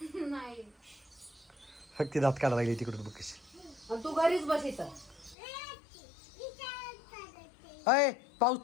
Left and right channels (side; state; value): right; drops out; at 5.4 s